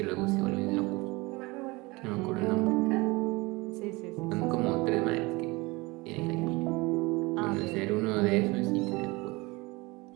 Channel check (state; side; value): quieter; left; 23.8 dB